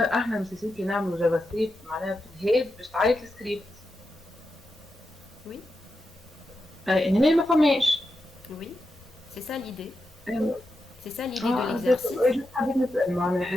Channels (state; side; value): normal; both; correlation 0.88